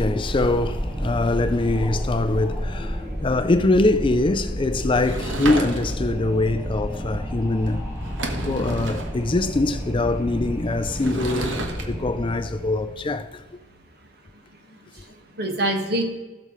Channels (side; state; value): both; normal; correlation 0.68